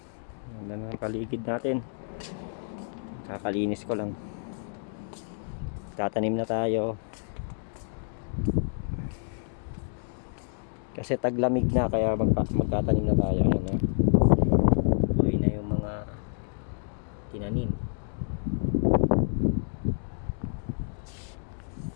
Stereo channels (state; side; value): silent; right; digital silence